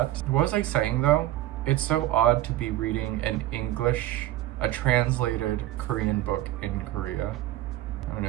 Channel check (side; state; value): left; quieter; 14.7 dB